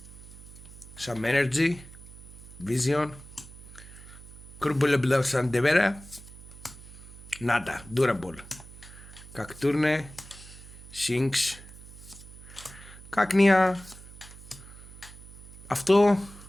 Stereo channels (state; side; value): noise; right; hum, 17 dB below the sound